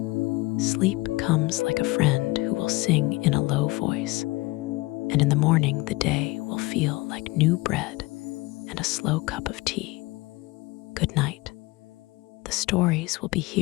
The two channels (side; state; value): right; quieter; 22.1 dB